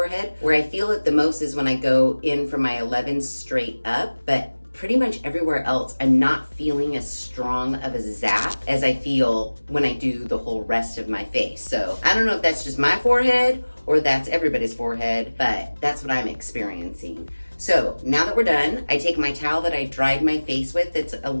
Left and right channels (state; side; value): inverted; both; correlation -1.00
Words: Where I feel it the most is when I go in from my 11 straight up, but pretty much everywhere else, I'm not feeling as strong of a zap as I feel when I do the whole rest of my face. So I don't know if that's just my forehead or that's everybody's forehead, but that's what I'm experiencing. So now that we're done, I take my towel that I dried my face with. It's a